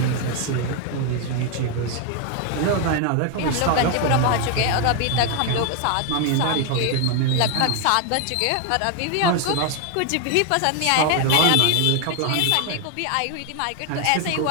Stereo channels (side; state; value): both; different; correlation 0.01